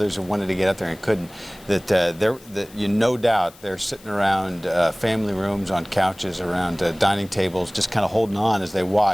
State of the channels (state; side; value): noise; left; hiss, 24 dB below the sound